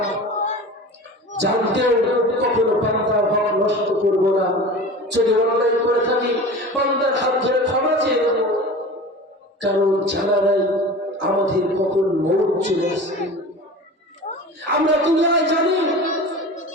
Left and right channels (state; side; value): normal; both; correlation 0.35